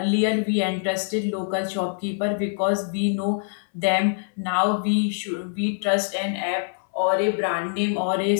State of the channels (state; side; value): silent; right; 62 dB below the other